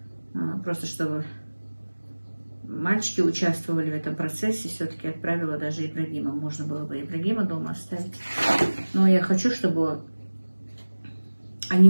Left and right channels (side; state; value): both; inverted; correlation -1.00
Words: просто чтобы мальчики участвовали в этом процессе, все-таки отправила даже Ибрагима. Можно было бы Ибрагима дома оставить. Но я хочу, чтобы они